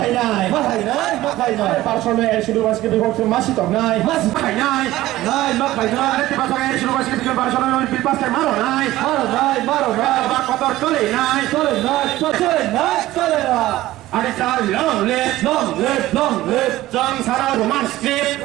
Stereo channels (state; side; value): quieter; left; 16.1 dB